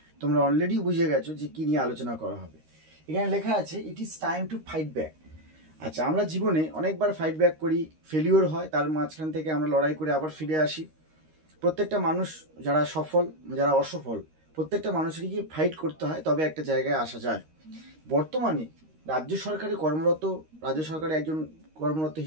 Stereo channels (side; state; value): left; late; 13 ms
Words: তোমরা অলরেডি বুঝে গেছো যে কী নিয়ে আলোচনা করা হবে। এখানে লেখা আছে ইট is time to fight back. আচ্ছা, আমরা জীবনে অনেকবার ফাইট ব্যাক করি, ফেলিওর হয়, তার মাঝখান থেকে আমরা লড়াই করে আবার ফিরে আসি। প্রত্যেকটা মানুষ, যারা সফল যারা অসফল, প্রত্যেকটা মানুষেরই ফাইট করতে হয়, তবে একটা জায়গায় আসা যায়। বর্তমানে রাজ্য সরকারে একজন কর্মরত